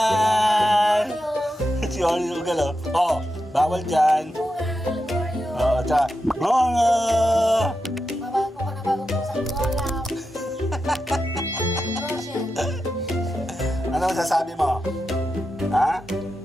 Si Ugal, oh. Oh, bawal dyan. Oo, tsaka, Mungan! Mabago ko na bagong pusang kolam. Ano masasabi mo? Ha?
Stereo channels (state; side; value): normal; both; correlation 0.89